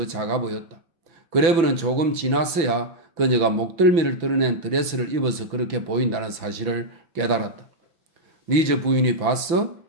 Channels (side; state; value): left; late; 6.0 ms